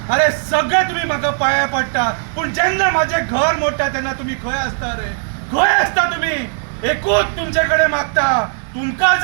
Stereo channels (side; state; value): left; silent; 66 dB below the other